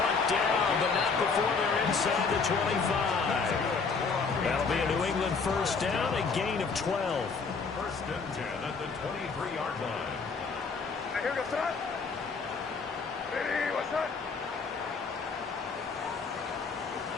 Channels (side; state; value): right; quieter; 4.9 dB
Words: down, but not before they're inside the 25. That'll be a New England first down, a gain of 12. First and 10 at the 23-yard line. Here goes that. Ready, what's that?